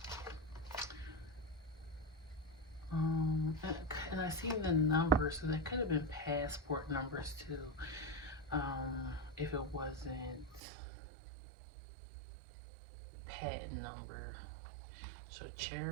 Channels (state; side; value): drops out; left; at 10.6 s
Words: And I see the numbers, so that could have been passport numbers too, if it wasn't patent number. So